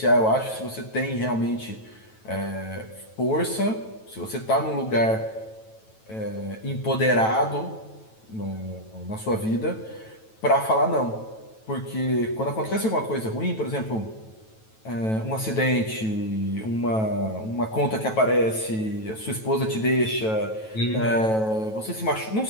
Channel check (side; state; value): right; late; 9.2 ms